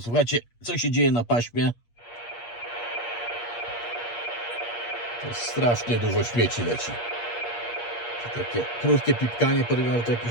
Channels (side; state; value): right; late; 8.5 ms